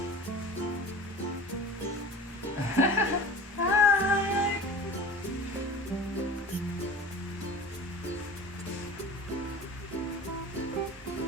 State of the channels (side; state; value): both; normal; correlation 0.37